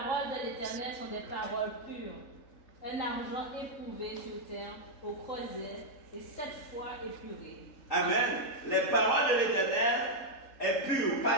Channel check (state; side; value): late; right; 3.7 ms